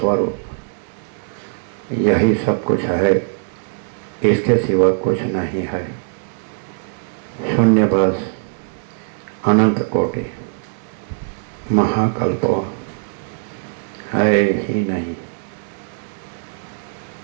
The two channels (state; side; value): silent; left; digital silence